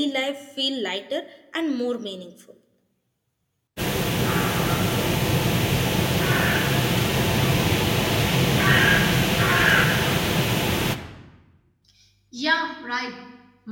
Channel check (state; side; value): identical; both; correlation 1.00